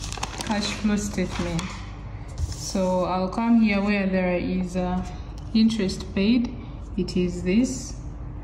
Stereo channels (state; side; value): identical; both; correlation 1.00